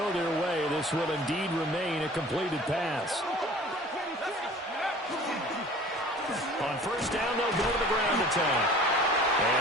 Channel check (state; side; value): normal; both; correlation 0.46